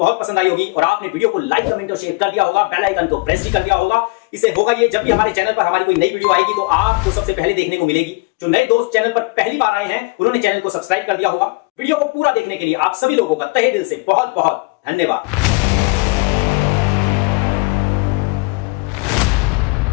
पसंद आई होगी और आपने वीडियो को लाइक, कमेंट और शेयर कर दिया होगा, बेल आइकन को प्रेस भी कर दिया होगा। इसे होगा ये जब भी हमारे चैनल पर हमारी कोई नई वीडियो आएगी तो आपको सबसे पहले देखने को मिलेगी। जो नए दोस्त चैनल पर पहली बार आए हैं उन्होंने चैनल को सब्सक्राइब कर दिया होगा। वीडियो को पूरा देखने के लिए आप सभी लोगों का तहे दिल से बहुत बहुत धन्यवाद।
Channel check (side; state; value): right; quieter; 27.7 dB